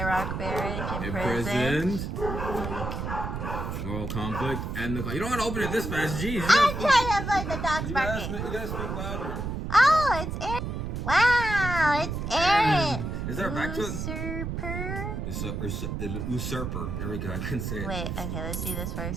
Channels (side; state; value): right; noise; rumble, 4 dB below the sound